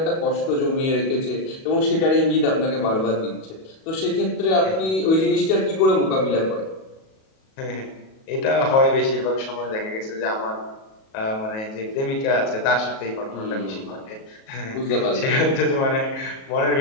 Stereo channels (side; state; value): right; late; 37 ms